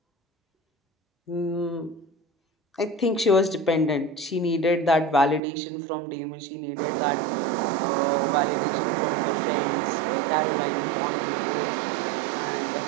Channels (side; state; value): left; drops out; at 5.4 s